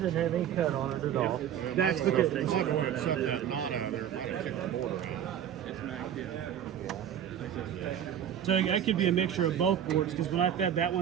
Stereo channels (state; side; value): quieter; left; 9.8 dB